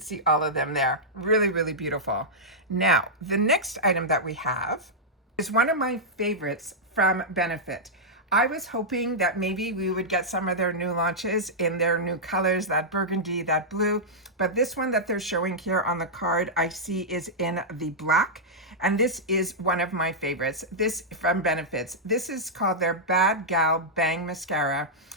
see all of them there. Really, really beautiful. Now, the next item that we have is one of my favorites from Benefit. I was hoping that maybe we would get some of their new launches in their new colors, that burgundy, that blue, but this one that they're showing here on the card I see is in the black, and this is one of my favorites. This from Benefits. This is called their Bad Gal Bang Mascara.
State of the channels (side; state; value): both; normal; correlation -0.09